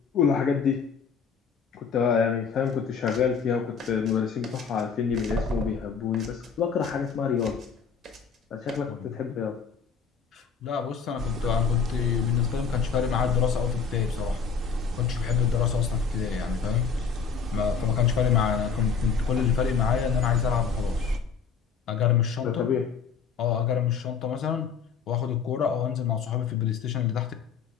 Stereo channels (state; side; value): quieter; right; 6.0 dB